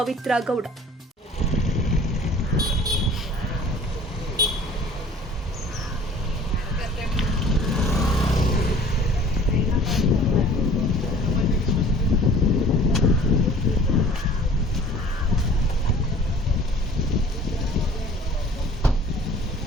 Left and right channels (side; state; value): both; normal; correlation 0.49